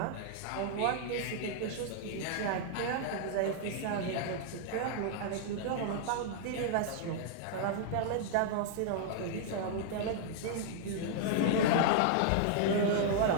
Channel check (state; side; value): different; both; correlation -0.01